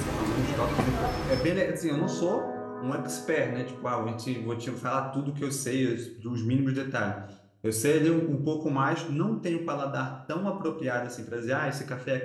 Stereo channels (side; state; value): both; identical; correlation 1.00